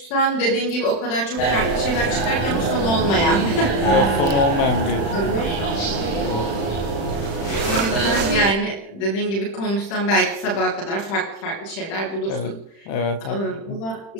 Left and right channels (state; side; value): late; right; 36 ms